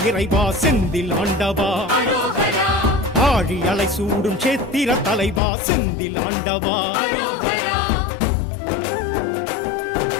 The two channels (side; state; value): right; drops out; at 5.4 s